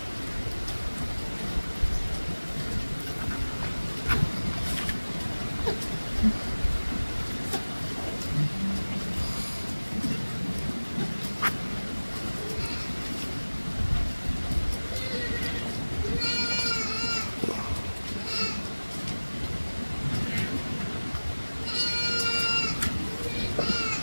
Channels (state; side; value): inverted; both; correlation -1.00